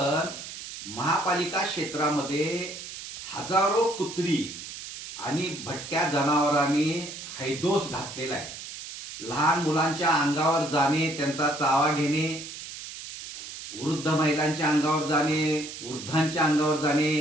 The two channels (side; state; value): right; noise; hiss, 11 dB below the sound